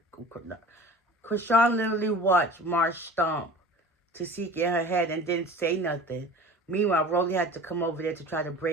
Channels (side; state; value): both; normal; correlation 0.41